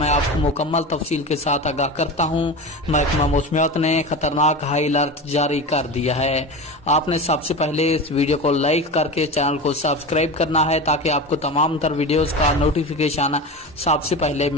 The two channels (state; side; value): normal; both; correlation 0.27